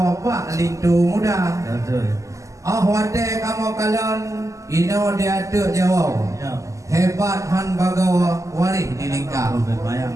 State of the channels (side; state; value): left; late; 0.16 ms